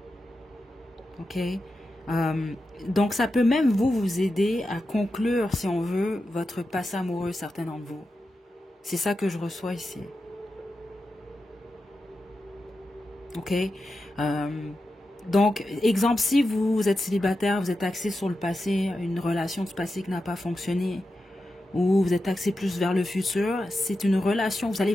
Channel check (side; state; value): both; normal; correlation 0.90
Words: OK? Donc, ça peut même vous aider à conclure, si on veut, votre passé amoureux, certains d'entre vous. C'est ça que je reçois ici. OK? Donc, exemple, si vous êtes célibataire, vous êtes axé sur le passé, une relation du passé qui n'a pas fonctionné, ou vous êtes axé plus vers le futur, c'est une relation, vous allez